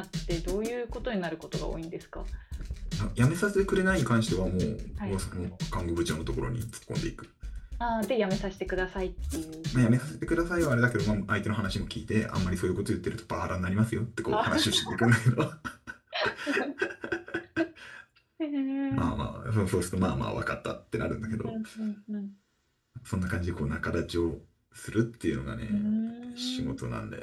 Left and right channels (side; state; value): both; identical; correlation 1.00